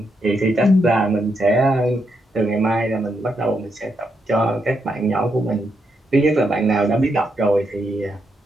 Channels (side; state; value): both; normal; correlation 0.81